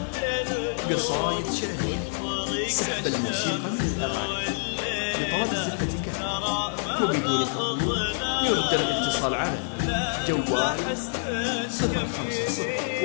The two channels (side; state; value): right; silent; digital silence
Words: قصايد شعرية، سحب الموسيقى من الأغاني. لطلب الزفة كاملة وبدون حضور يرجى الاتصال على جوال